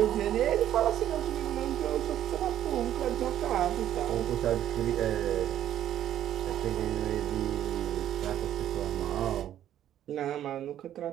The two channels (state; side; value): quieter; left; 11.4 dB